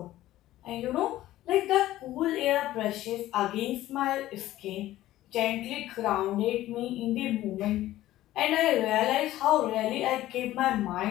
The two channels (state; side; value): quieter; right; 14.9 dB